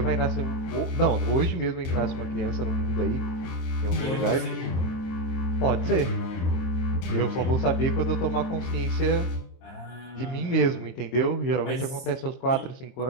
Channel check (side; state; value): right; late; 23 ms